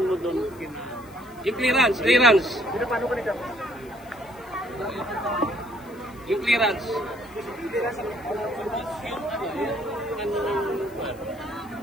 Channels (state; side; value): noise; left; hiss, 26 dB below the sound